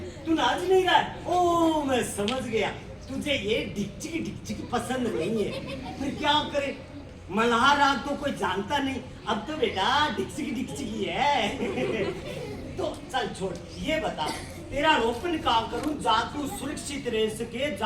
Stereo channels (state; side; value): identical; both; correlation 1.00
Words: तू नाच नहीं रहा है? ओ मैं समझ गया, तुझे ये डिक्चिक पसंद नहीं है। फिर क्या करे, मल्हार राग तो कोई जानता नहीं, अब तो बेटा डिक्चिक ही है। तो चल छोड़, ये बता तेरा रोपण काम करूं जा तू सुरक्षित रह सके,